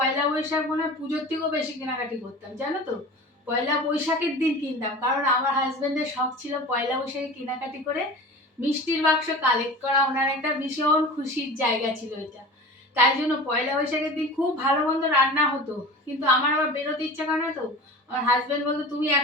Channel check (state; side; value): normal; both; correlation 0.36